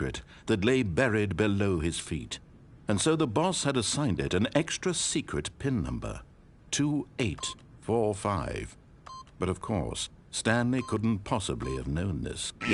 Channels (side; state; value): both; identical; correlation 1.00